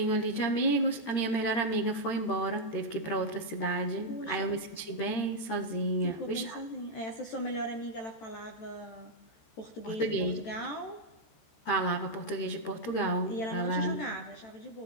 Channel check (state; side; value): late; right; 13 ms